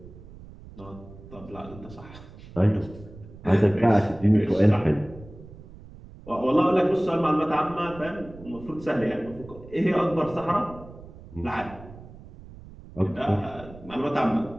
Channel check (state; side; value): noise; right; rumble, 18 dB below the sound